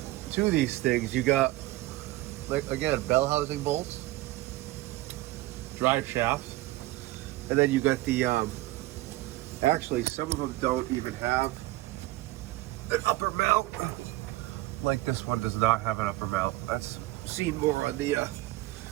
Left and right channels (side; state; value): left; quieter; 18.2 dB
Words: to these things. You got, like, again, bell housing bolts, drive shafts, and then you got the, actually some of them don't even have an upper mount. Like this one does not have an upper mount. That's seen more on the